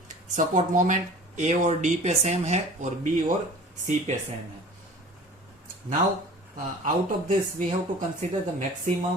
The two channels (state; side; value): normal; both; correlation 0.43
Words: support moment. A और डी पे सेम है और बी और सी पे सेम है. Now out of this we have to consider the